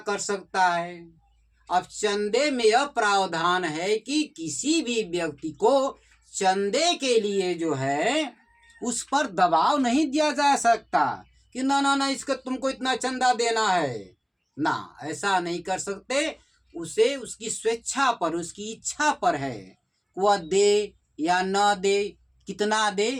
कर सकता है। अब चंदे में यह प्रावधान है कि किसी भी व्यक्ति को चंदे के लिए जो है उस पर दबाव नहीं दिया जा सकता कि ना इसका तुमको इतना चंदा देना है ना, ऐसा नहीं कर सकते। उसे उसकी स्वेच्छा पर, उसकी इच्छा पर है, वह दे या न दे, कितना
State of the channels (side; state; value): both; identical; correlation 1.00